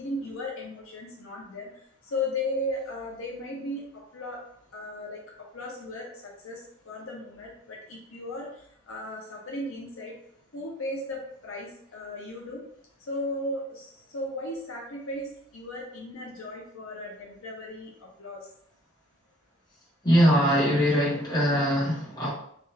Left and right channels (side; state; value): both; normal; correlation 0.57